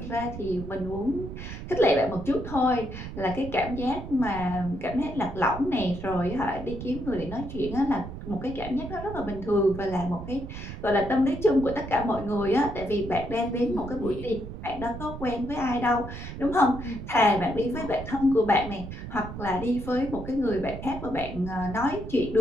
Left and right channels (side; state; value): right; noise; rumble, 9 dB below the sound